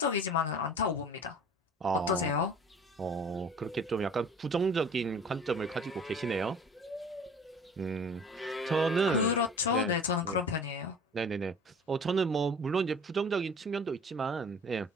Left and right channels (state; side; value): normal; both; correlation 0.44